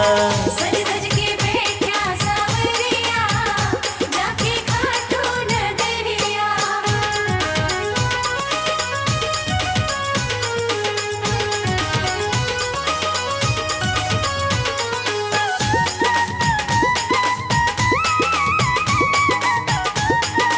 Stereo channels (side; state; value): both; identical; correlation 1.00